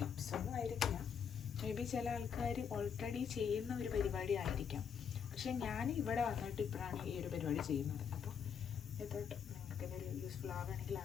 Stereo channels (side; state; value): right; quieter; 7.3 dB